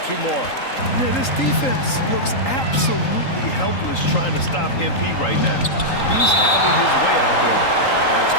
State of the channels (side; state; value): right; late; 3.8 ms